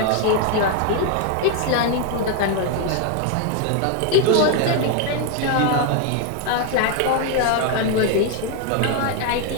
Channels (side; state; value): both; different; correlation 0.01